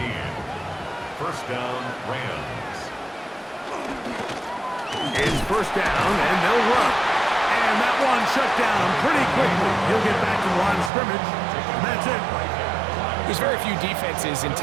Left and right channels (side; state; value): left; drops out; at 10.9 s